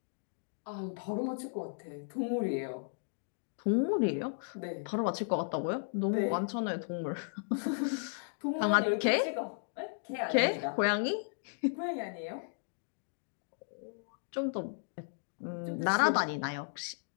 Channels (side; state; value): right; silent; digital silence